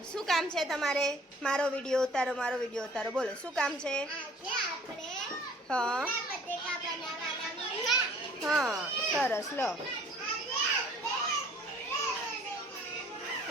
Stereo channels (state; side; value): normal; both; correlation 0.53